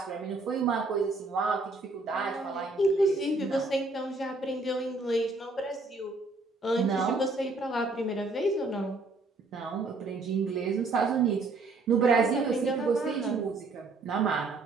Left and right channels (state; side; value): quieter; left; 3.4 dB